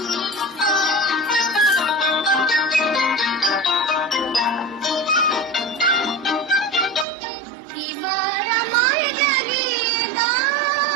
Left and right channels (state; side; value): drops out; left; at 7.1 s